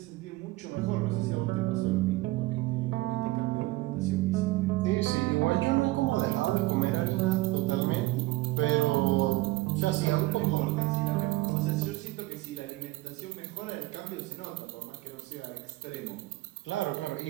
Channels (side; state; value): left; quieter; 19.1 dB